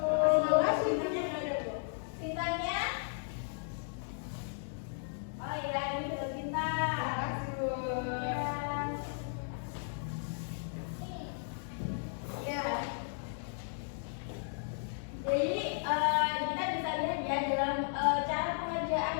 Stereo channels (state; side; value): silent; right; 54 dB below the other